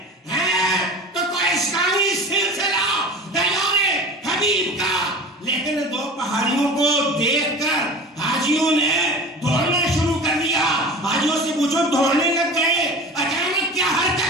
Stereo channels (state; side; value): normal; both; correlation 0.36